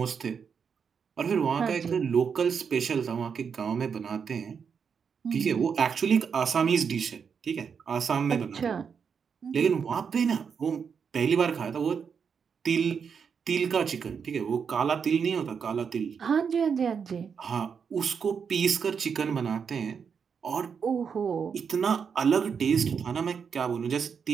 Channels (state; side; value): quieter; left; 6.5 dB